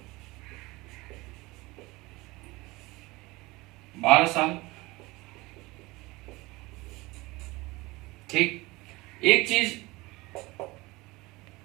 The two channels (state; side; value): quieter; left; 21.9 dB